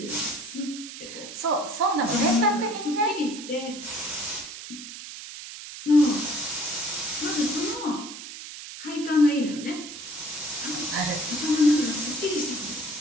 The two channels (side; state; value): right; noise; hiss, 11 dB below the sound